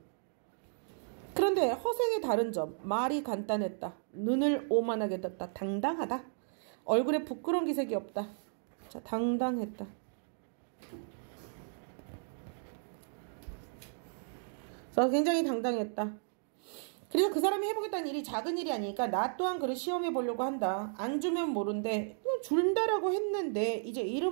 그런데 허생의 다른 점. 말이 간단했다. 눈을 오만하게 떴다. 당당하다. 얼굴에 부끄러운 기색이 없다. 자, 당당했다. 그래서 굉장히 당당했다. 그래서 그 사람이 해보겠다는 일이 작은 일이 아니니까 나 또한 그를 시험해 보려고 한다. 안 주면 모른대. 준다라고 했는데 이제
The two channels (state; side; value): silent; left; digital silence